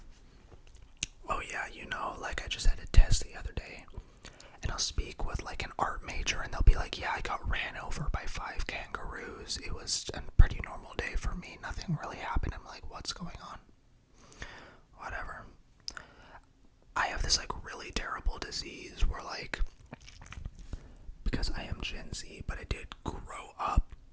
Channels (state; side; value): identical; both; correlation 1.00